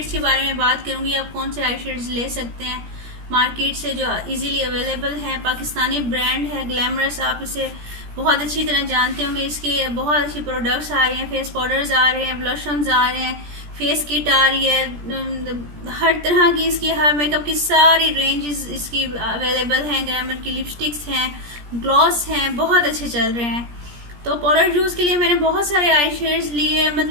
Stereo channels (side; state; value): left; late; 17 ms